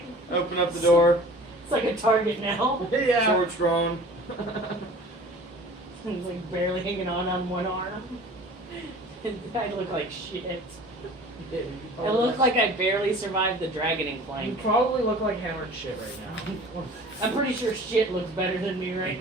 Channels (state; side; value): normal; both; correlation 0.44